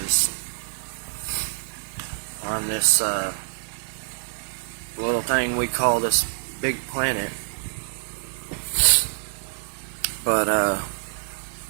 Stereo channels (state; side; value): silent; left; digital silence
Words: on this little thing we call this big planet. But